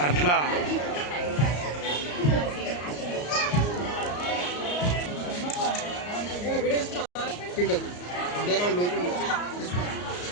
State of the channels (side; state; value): right; late; 34 ms